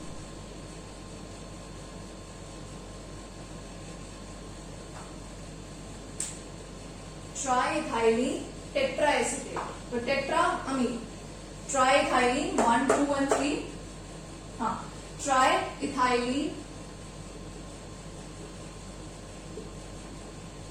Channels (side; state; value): both; identical; correlation 1.00